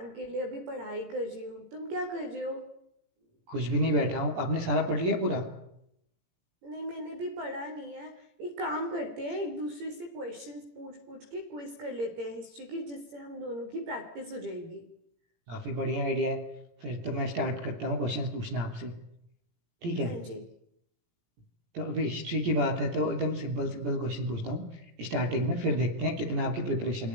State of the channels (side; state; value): left; late; 17 ms